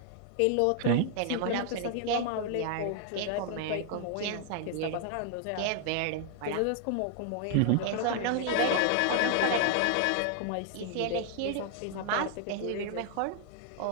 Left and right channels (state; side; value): different; both; correlation 0.00